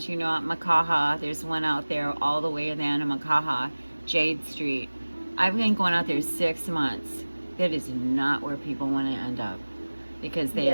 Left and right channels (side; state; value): both; inverted; correlation -1.00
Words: you know, at Makaha. There's one out there all the way in the end of Makaha, Jade Street. I've been going out there 6 months. That is not where people want to end up, because they